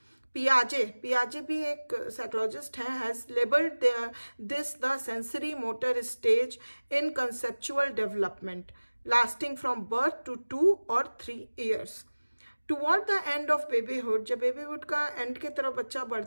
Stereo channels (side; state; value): both; inverted; correlation -1.00